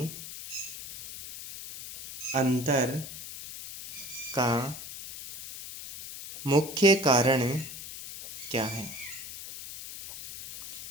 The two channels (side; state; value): left; noise; hiss, 11 dB below the sound